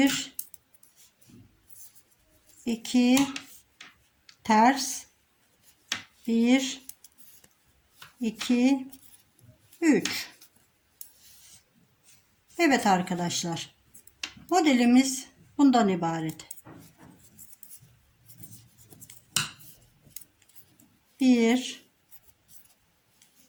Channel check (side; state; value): both; identical; correlation 1.00